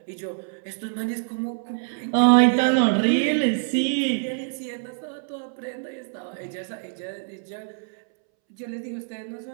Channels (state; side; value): silent; left; 62 dB below the other